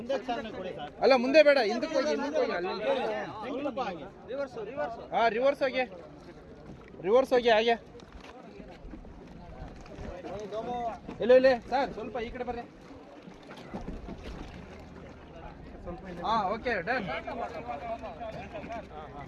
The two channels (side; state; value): both; identical; correlation 1.00